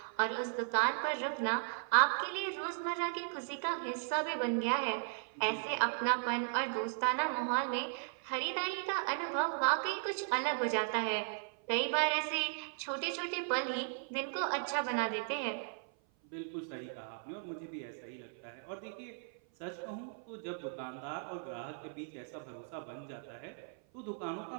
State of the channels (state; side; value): silent; left; 53 dB below the other